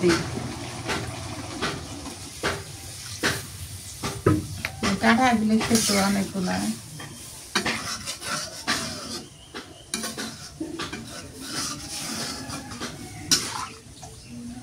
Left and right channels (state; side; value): identical; both; correlation 1.00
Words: দিই। কাঁটা দিলে সেদ্ধ অনেকগুলা।